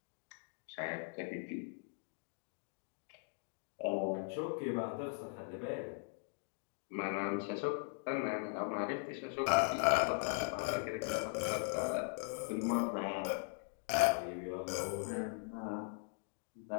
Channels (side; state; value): right; silent; 51 dB below the other